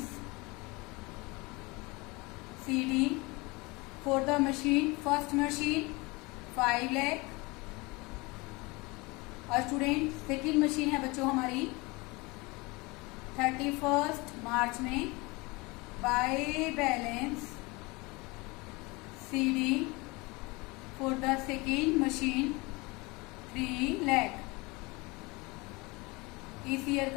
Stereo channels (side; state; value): right; quieter; 25.0 dB